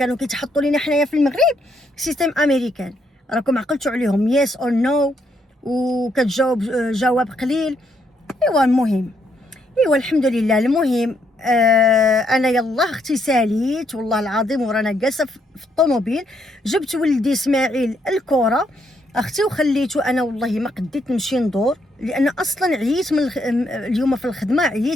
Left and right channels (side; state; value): both; normal; correlation 0.74